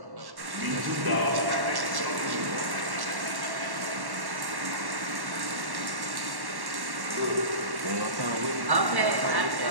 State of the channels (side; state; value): left; late; 1.1 ms